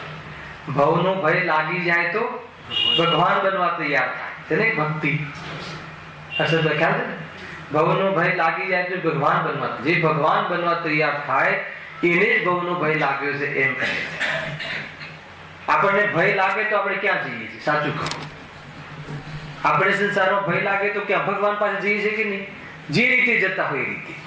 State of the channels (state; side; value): identical; both; correlation 1.00